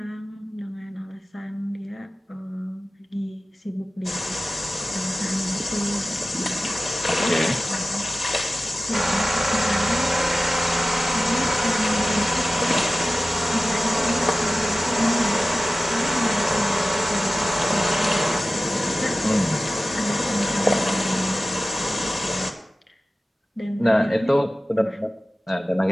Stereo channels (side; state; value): both; normal; correlation 0.96